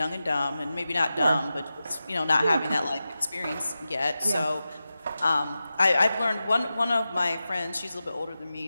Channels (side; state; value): both; inverted; correlation -0.93